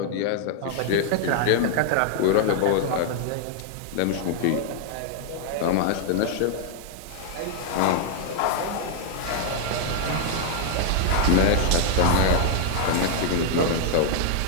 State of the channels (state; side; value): different; both; correlation 0.00